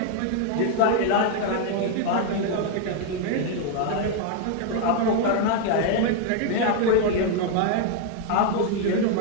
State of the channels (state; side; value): different; both; correlation 0.00